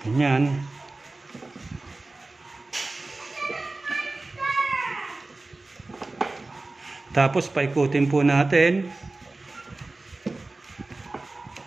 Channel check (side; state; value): left; quieter; 3.2 dB